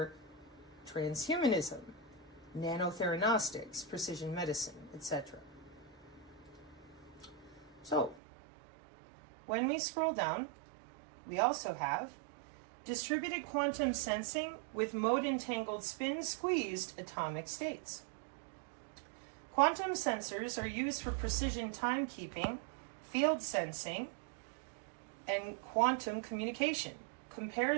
transhumanism, nanotheranostics, precision medicine, etc. So, when we scroll down, we also have distributed quantum sensing with mode-entangled spin-squeezed atomic states. Quantum sensors are used for precision timekeeping, field sensing, and quantum communication.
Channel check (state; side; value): drops out; left; at 8.2 s